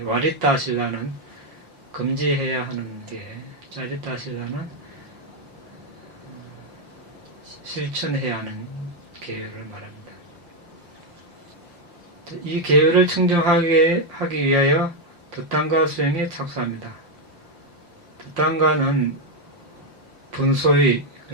와리따 신라는 금지해야 하는 게, 짜리따 신라는 실천해야 하는 계율을 말합니다. 이 계율을 청정하기 위하여 득단가 수행에 착수합니다. 득단가는 분소의,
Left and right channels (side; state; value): left; late; 5.6 ms